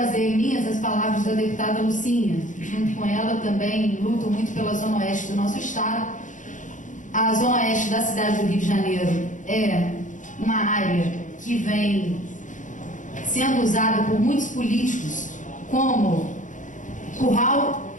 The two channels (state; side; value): late; right; 0.37 ms